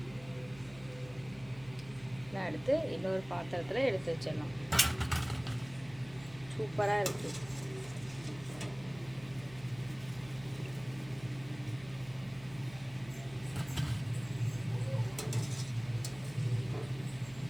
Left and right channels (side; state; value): right; noise; hum, 19 dB below the sound